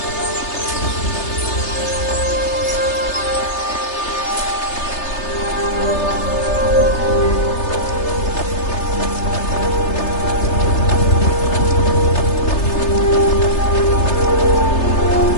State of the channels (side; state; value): right; late; 3.3 ms